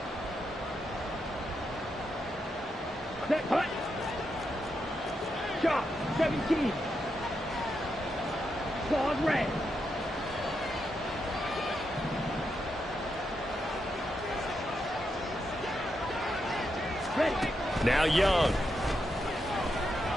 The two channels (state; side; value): normal; both; correlation 0.83